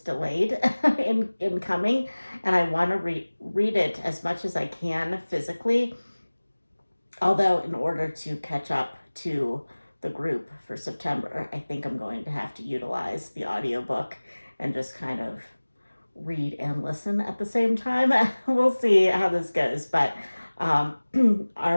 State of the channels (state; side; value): inverted; both; correlation -1.00